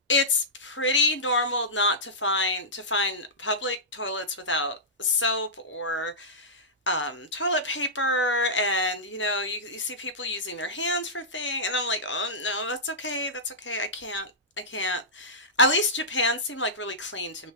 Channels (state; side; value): normal; both; correlation -0.15